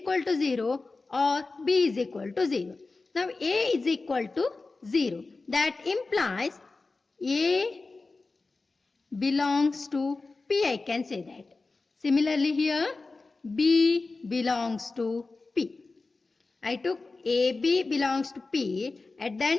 to 0 or B is equal to 0. Now A is equal to 0. That implies A belongs to P, I can say that. Similarly here B belongs to P. I took AB belongs to P and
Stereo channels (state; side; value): quieter; right; 3.7 dB